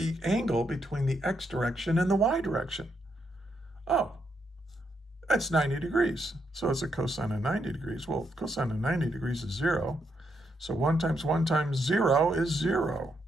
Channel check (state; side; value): normal; both; correlation 0.79